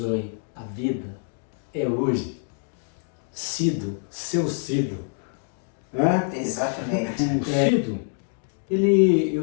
a vida é hoje. Cido, seu Cido. Hã? Exatamente. Cido,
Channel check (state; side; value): silent; right; 61 dB below the other